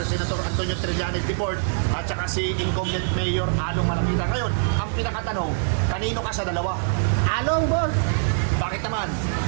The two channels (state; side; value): silent; left; digital silence